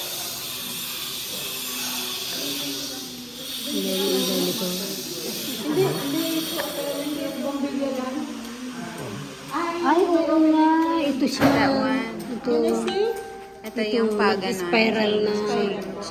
Yung ilaw nito. Ay, oo nga. Ito siya. That one. Ito. Ito Ito yung paganon. Spiral na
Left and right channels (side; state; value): both; identical; correlation 1.00